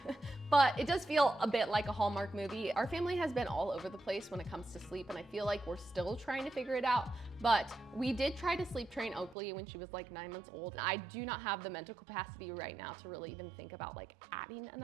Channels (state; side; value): drops out; left; at 9.3 s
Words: But it does feel a bit like a Hallmark movie. Our family has been all over the place when it comes to sleep, and I feel like we're still trying to figure it out. But we did try to sleep train Oakley when she was like 9 months old. I do not have the mental capacity right now to really even think about like adding